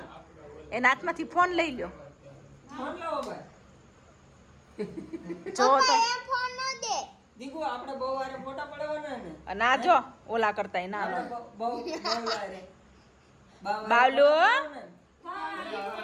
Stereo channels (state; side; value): identical; both; correlation 1.00